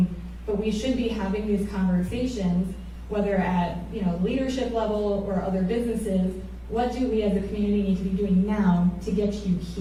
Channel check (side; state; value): both; identical; correlation 1.00